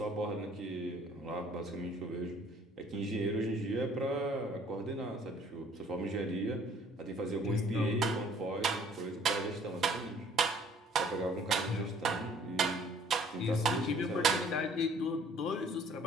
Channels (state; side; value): normal; both; correlation 0.57